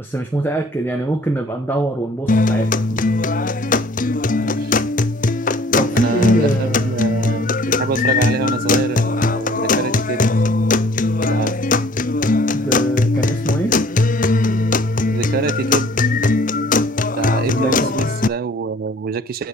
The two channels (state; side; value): normal; both; correlation 0.54